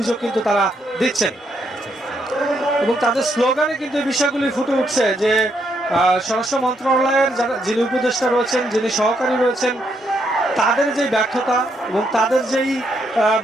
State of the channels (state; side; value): normal; both; correlation 0.76